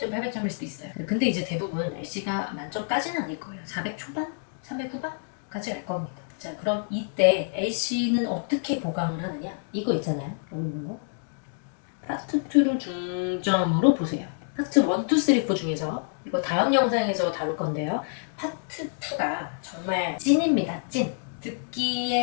800점일 수도 있어요. 근데 이제 대부분 LC가 만점까지는 아닐 거예요. 400 초반? 300 후반까지 갈 겁니다. 자, 그럼 이때 LC는 어떻게 보강을 하느냐? 이거 있잖아요. 이거 파트 2를 중점으로 보세요. 파트 1, 2, 3, 4 중에서 이거 다음 영상에서 다룰 건데요. 파트 2가 정말 찐입니다. 찐.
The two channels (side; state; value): right; silent; digital silence